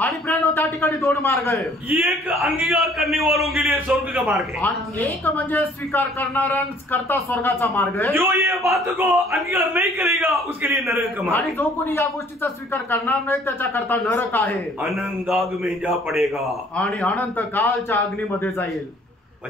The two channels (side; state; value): both; normal; correlation 0.57